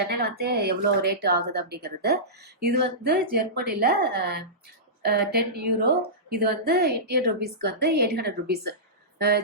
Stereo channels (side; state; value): both; normal; correlation -0.18